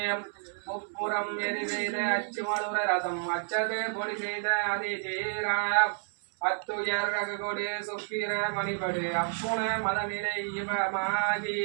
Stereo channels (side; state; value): left; silent; 57 dB below the other